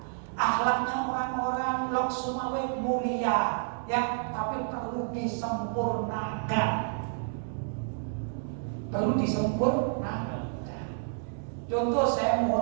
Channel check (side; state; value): left; silent; digital silence